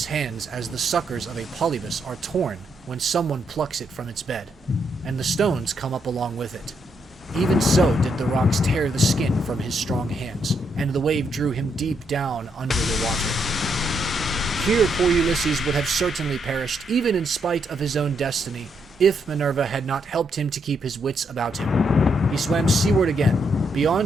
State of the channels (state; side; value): normal; both; correlation 0.77